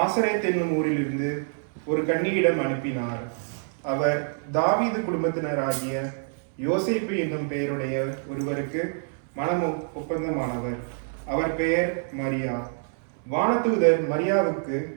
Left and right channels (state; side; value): silent; left; 61 dB below the other